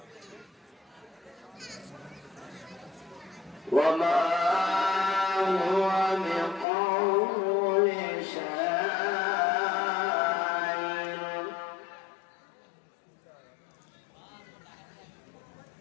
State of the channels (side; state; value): right; drops out; at 6.7 s